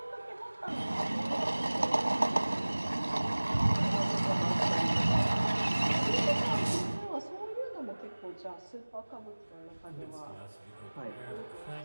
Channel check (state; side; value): inverted; both; correlation -1.00